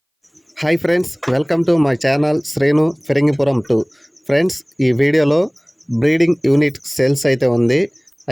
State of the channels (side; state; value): both; identical; correlation 1.00